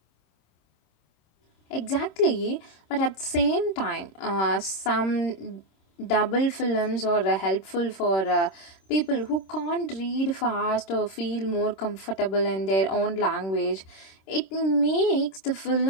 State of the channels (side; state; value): right; late; 26 ms